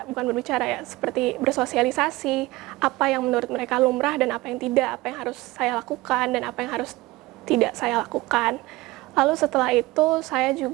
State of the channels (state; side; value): quieter; left; 20.1 dB